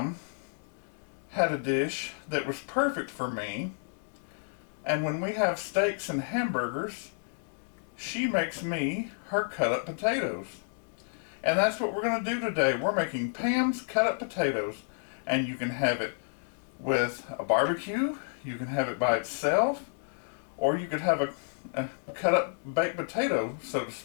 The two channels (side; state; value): right; silent; digital silence